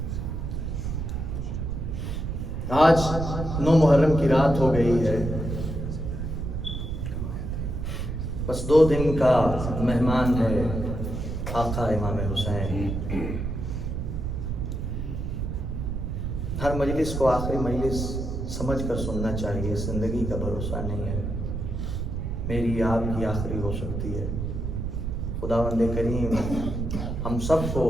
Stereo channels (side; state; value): right; noise; rumble, 3 dB below the sound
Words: آج 9 محرم کی رات ہو گئی ہے، بس 2 دن کا مہمان ہے آقا امام حسین۔ ہر مجلس کو آخری مجلس سمجھ کر سننا چاہیے، زندگی کا بھروسہ نہیں ہے، میری آپ کی آخری ہو سکتی ہے۔ خداوند کریم ہم سب کو